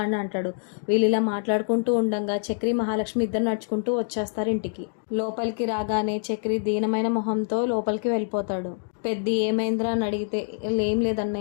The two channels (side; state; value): right; silent; digital silence